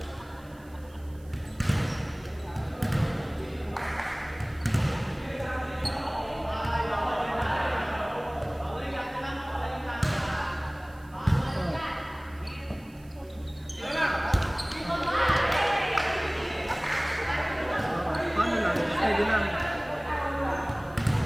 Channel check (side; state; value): right; noise; hiss, 28 dB below the sound